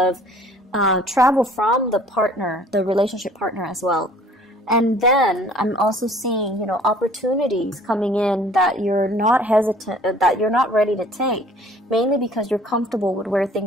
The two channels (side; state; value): both; normal; correlation 0.53